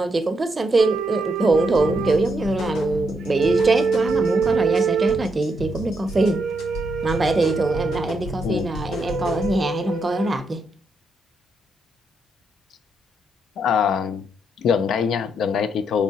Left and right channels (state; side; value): normal; both; correlation 0.79